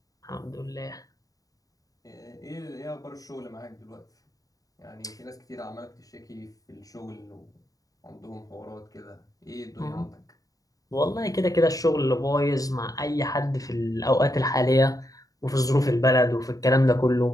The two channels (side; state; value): right; late; 0.17 ms